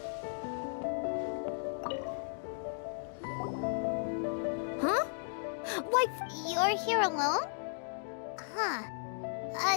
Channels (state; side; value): silent; right; digital silence